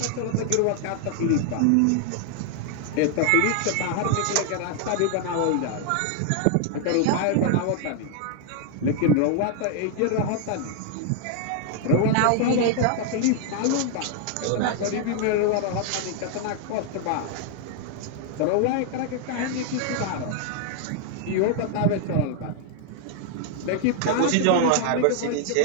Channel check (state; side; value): different; both; correlation 0.00